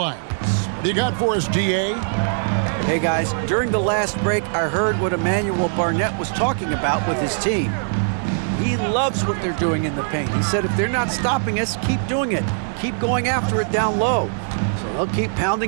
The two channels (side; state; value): left; silent; digital silence